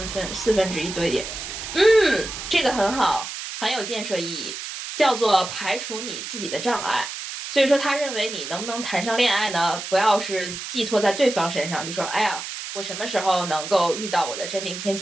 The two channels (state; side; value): noise; right; hiss, 8 dB below the sound